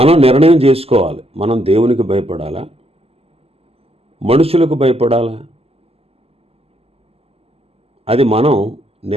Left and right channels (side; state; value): left; late; 0.29 ms